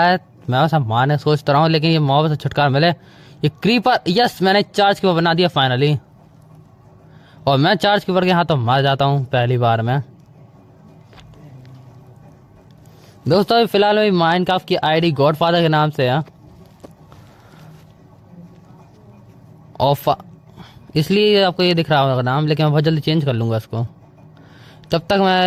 है, मैं सब मारने सोचता रहा हूँ लेकिन ये मॉब से छुटकारा मिले। ये क्रीपर, यस मैंने चार्ज कीपर बना दिया फाइनली। और मैं चार्ज कीपर के हाथों मर जाता हूँ पहली बार में। दोस्तों अभी फिलहाल मेरी माइनक्राफ्ट की आईडी गॉडफादर के नाम से है और इसलिए आपको ये दिख रहा होगा नाम, लेकिन मैं बहुत जल्दी चेंज कर लूँगा इसको। तब तक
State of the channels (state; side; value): identical; both; correlation 1.00